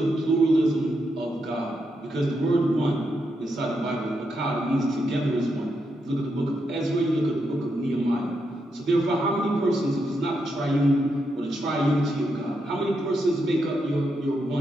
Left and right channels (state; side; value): normal; both; correlation 0.82